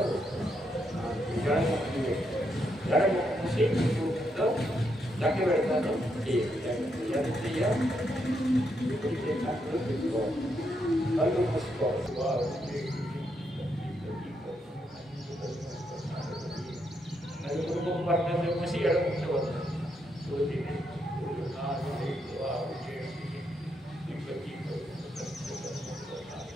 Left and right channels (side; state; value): both; normal; correlation 0.79